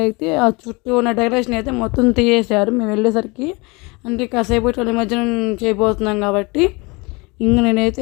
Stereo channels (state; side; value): quieter; right; 26.8 dB